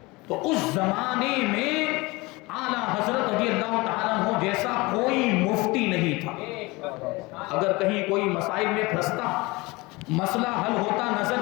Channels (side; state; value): right; quieter; 23.4 dB